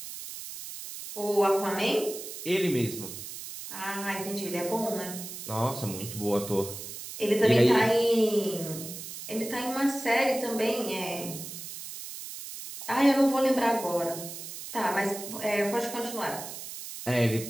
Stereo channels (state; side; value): noise; right; hiss, 10 dB below the sound